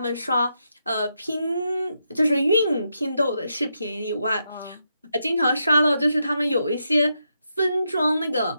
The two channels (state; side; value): inverted; both; correlation -0.82